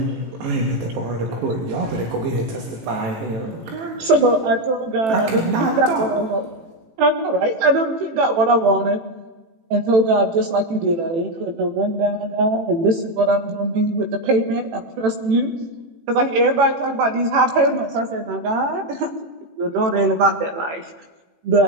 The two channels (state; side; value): late; left; 18 ms